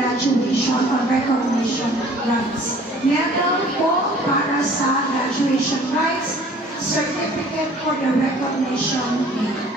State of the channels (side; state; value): both; normal; correlation 0.51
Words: or recognition rites. Medal po para sa graduation rites, certificate for the recognition day.